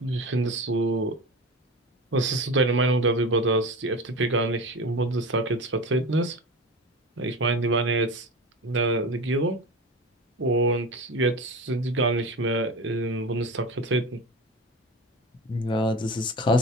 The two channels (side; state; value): both; normal; correlation 0.28